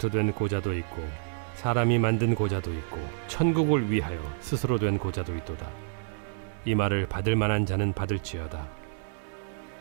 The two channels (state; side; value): silent; left; 59 dB below the other